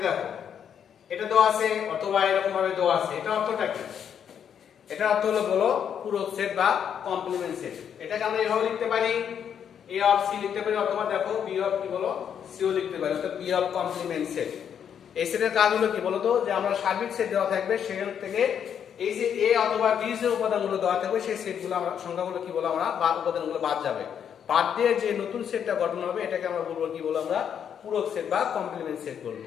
দেখো এটা দেওয়া আছে অথবা এরকম ভাবে দেওয়া আছে, এটা অর্থটা কি, এটা অর্থ হলো বলো পূরক সেট বা কমপ্লিমেন্ট সেট। এটাকে আমরা এভাবে লিখতে পারি এ অফ সি লিখতে পারি, অথবা দেখো বি অফ কি বলো সিও লিখতে পারি, অর্থাৎ বি অফ কমপ্লিমেন্ট সেট। এই সেটের কাজ হলো কি বলতো যে আমরা সার্বিক সেট দেওয়া থাকবে, সেখান থেকে এই যে এ অথবা বি যে উপাদানগুলো দেওয়া থাকবে সেই সেটগুলো আমরা সংখ্যাগুলো কি বলো আমরা বা উপাদানগুলো বাদ যাবে, বাদ দিয়ে যে নতুন সেটটা গঠন হবে এটাকে আমরা বলবো কি বলবো আমরা পূরক সেট বা কমপ্লিমেন্ট সেট বলবো।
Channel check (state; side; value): quieter; right; 8.3 dB